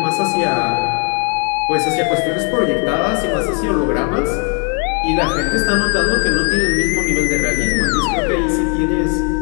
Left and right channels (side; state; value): right; quieter; 37.9 dB